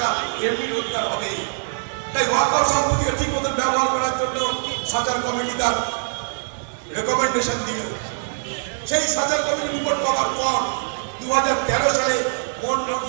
এমনি রোজগার হবে। তাই ওয়াকফ সম্পত্তিকে ঠিক মতন ব্যবহার করার জন্য সাজার কমিটি তার রেকমেন্ডেশন দিল। সেই সাজার কমিটি রিপোর্ট পাওয়ার পর 2013 সালে মনমোহন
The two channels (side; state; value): left; silent; 64 dB below the other